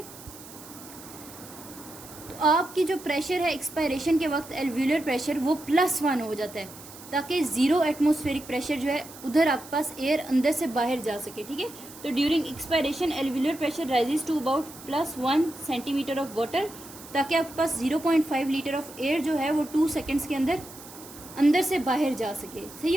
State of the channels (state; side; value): noise; right; hiss, 17 dB below the sound